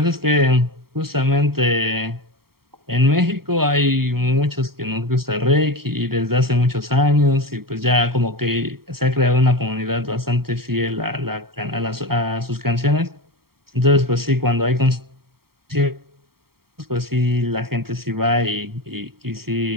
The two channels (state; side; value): late; left; 0.94 ms